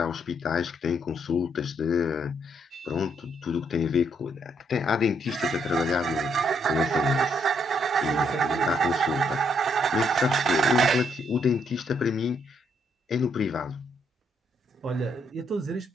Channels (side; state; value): both; normal; correlation 0.73